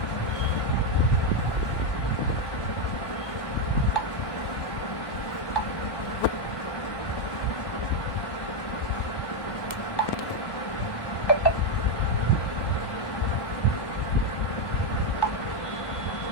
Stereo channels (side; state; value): right; late; 1.1 ms